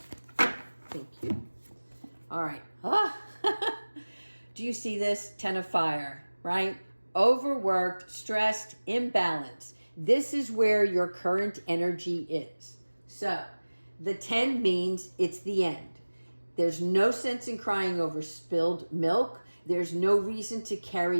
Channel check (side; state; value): both; inverted; correlation -1.00